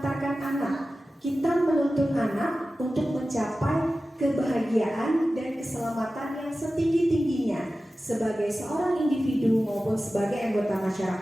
anak. Kita menuntun anak untuk mencapai kebahagiaan dan keselamatan yang setinggi-tingginya sebagai seorang individu maupun sebagai anggota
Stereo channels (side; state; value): both; normal; correlation 0.95